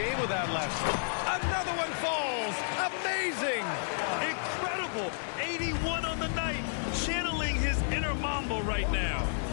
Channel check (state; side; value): silent; right; 56 dB below the other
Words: with that last one. Another one falls. Amazing. Incredible. 81 on the night. Channeling his inner Mamba right now.